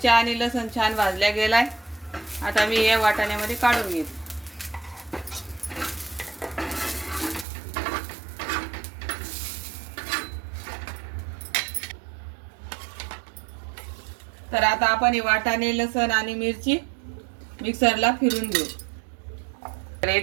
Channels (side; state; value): left; drops out; at 7.5 s